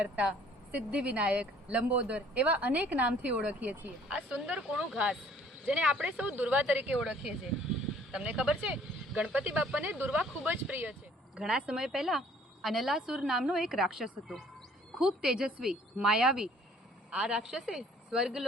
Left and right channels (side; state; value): both; normal; correlation 0.57